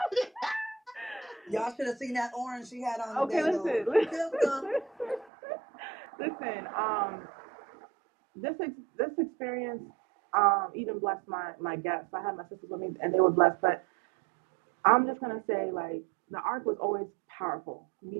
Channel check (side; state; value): left; drops out; at 5.3 s